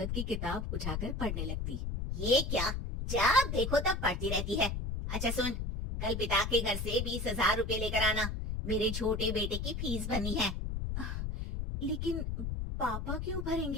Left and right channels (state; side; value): noise; left; rumble, 3 dB below the sound